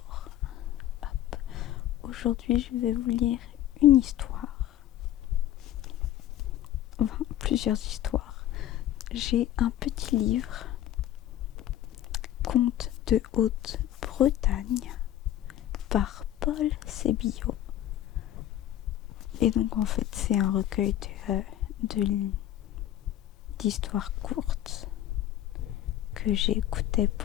aujourd'hui je vais vous lire une histoire. Enfin, plusieurs histoires. J'ai un petit livre, Contes de Haute-Bretagne, par Paul Sébillot. Et donc en fait c'est un recueil d'histoires courtes que j'écoutais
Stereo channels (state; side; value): quieter; right; 12.6 dB